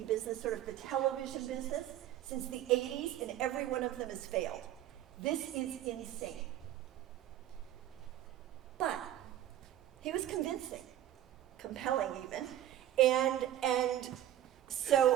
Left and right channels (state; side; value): quieter; left; 12.4 dB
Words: business, sort of the television business, since the 80s, and every one of them has failed. This is insane. But he was convincing, compelling even, and